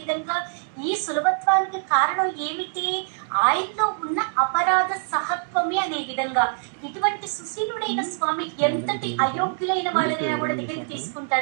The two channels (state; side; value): silent; left; 58 dB below the other